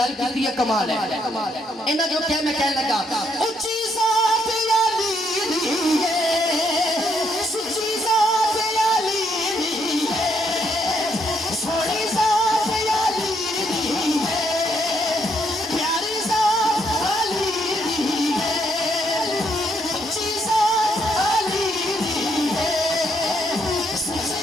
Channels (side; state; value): both; normal; correlation 0.74